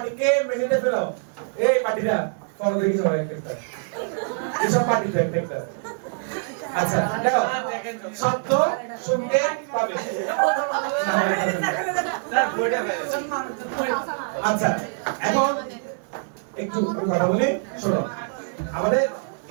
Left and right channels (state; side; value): silent; left; digital silence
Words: মেঝেতে ফেলাও এই বাটিটা ফলো দেখি সবাই একটা এসব বাটিটা একটা আচ্ছা দেখো শব্দ শুনতে পাবে আচ্ছা এখন একটু আমি কথা বলি শোনো আমাদের